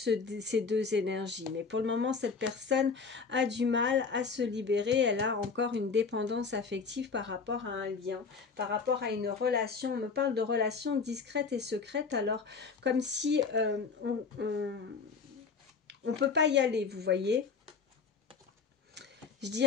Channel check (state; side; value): quieter; right; 5.1 dB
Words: deux énergies. Mais pour le moment, cette personne a du mal à se libérer, elle a encore une dépendance affective par rapport à un lien, par rapport à une relation. On me parle de relations discrètes et secrètes, alors comme si on peut pas y aller, vous voyez. Je